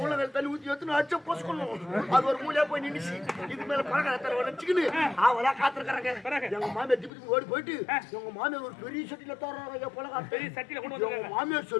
உள்ள தண்ணி ஊற்றி வச்சு அடிச்ச போஸ்கணும். அது ஒரு மூலையா போய் நின்னுச்சு. இது மேல பலகாரத்தை வச்சுக்கின்னு அவளா காத்திருக்கிறாங்க. எங்க மாமியார் திப்பி ஓடி போயிட்டு எங்க மாமியார் ஒரு பெரிய சட்டியில தர்றாங்க ஐயா பலகாரம். பெரிய சட்டியில கொண்டு வந்து மாமியார்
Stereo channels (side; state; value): right; drops out; at 7.1 s